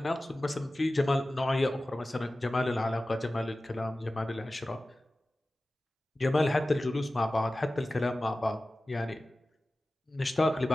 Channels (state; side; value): normal; both; correlation 0.96